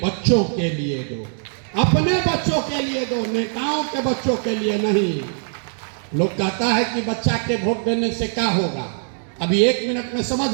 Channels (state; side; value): silent; left; digital silence